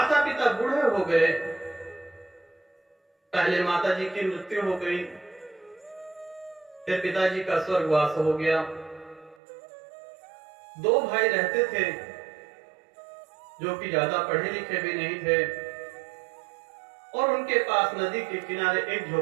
पिता बूढ़े हो गए। पहले माता जी की मृत्यु हो गई, फिर पिताजी का स्वर्गवास हो गया। दो भाई रहते थे, जो कि ज्यादा पढ़े लिखे भी नहीं थे, और उनके पास नदी के किनारे एक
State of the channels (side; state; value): left; drops out; at 9.3 s